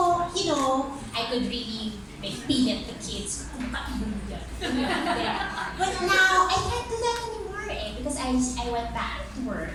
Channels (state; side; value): identical; both; correlation 1.00